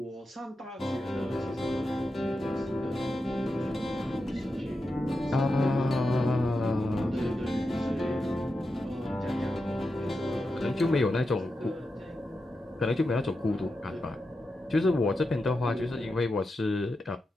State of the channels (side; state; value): both; normal; correlation 0.89